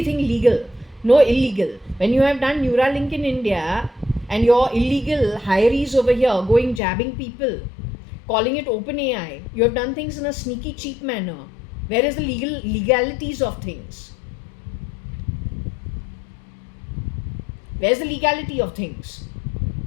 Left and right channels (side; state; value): right; drops out; at 6.8 s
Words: legal, no illegal. When you have done Neuralink in India and your illegal hirees over here going jabbing people, calling it open AI, you have done things in a sneaky, cheap manner. Where is the legalities of things? Where's the legality of things?